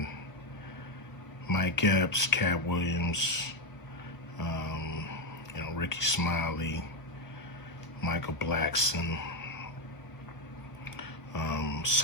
Mike Epps, Katt Williams, Ricky Smiley, Michael Blackson,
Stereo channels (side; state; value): right; late; 1.1 ms